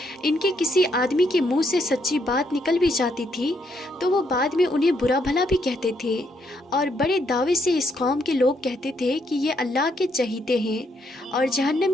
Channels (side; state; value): both; normal; correlation 0.74